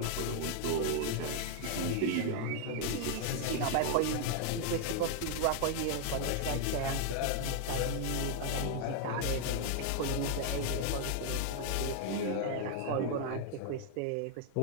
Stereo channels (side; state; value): both; different; correlation 0.00